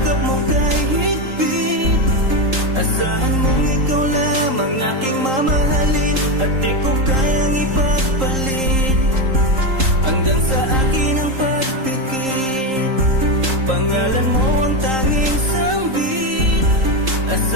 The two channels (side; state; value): left; late; 3.8 ms